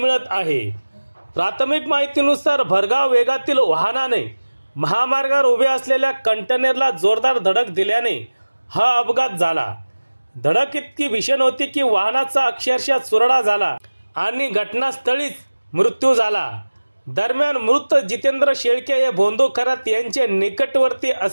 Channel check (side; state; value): both; inverted; correlation -1.00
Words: आहे। प्राथमिक माहितीनुसार भरधाव वेगातील वाहनाने महामार्गावर उभे असलेल्या कंटेनरला जोरदार धडक दिल्याने हा अपघात झाला। धडक इतकी भीषण होती की वाहनाचा अक्षरशः चुरडा झाला आणि घटनास्थळीच मृत्यू झाला। दरम्यान मृत जितेंद्र शेळके हे भोंदू खरात यांचे निकटवर्ती